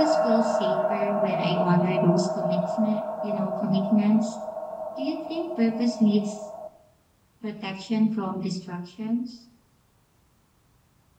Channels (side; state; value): both; identical; correlation 1.00